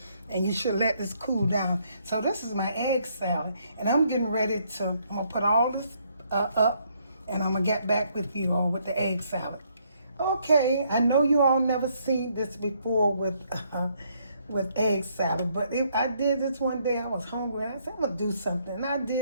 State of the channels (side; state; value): both; inverted; correlation -0.70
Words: and you should let this cool down. So this is my egg salad, and I'm getting ready to, I'm going to put all this up, and I'm going to get back with you all with the egg salad. Okay, I know you all never seen this before with egg salad, but I did this one day. I was hungry, and I said, I'm going to do something, and I